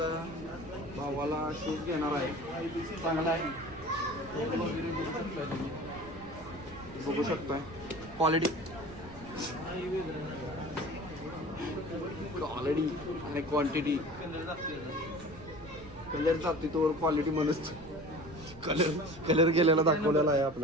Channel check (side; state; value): right; noise; rumble, 19 dB below the sound